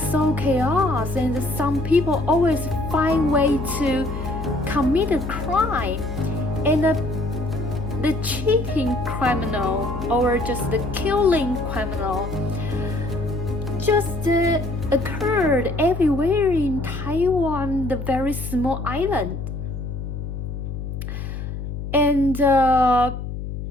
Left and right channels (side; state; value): left; noise; hum, 6 dB below the sound